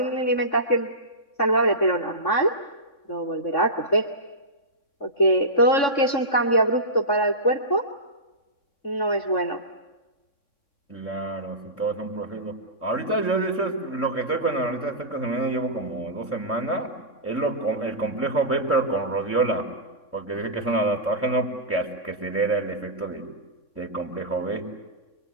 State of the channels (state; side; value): late; right; 3.6 ms